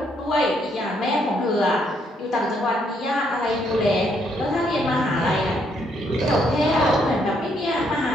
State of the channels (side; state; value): both; normal; correlation 0.72